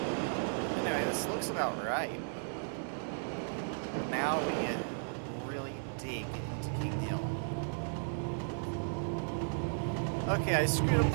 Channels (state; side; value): silent; left; 54 dB below the other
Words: Anyway, this looks about right. Now we really dig into King Hill. Okay, I screwed up